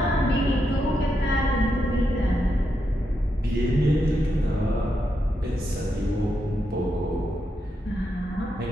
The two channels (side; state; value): both; normal; correlation 0.83